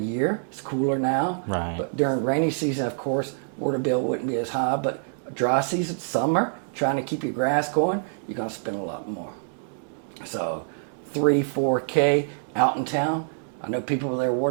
year. It's cooler now. Right. But during rainy season, of course, water bill wouldn't be as high. But dry season, summer, trying to keep your grass going, you're going to spend a lot more. So 3, 4K out in town. I know people with their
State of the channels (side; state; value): left; silent; digital silence